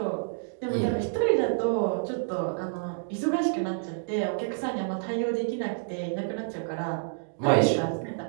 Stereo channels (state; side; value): silent; left; digital silence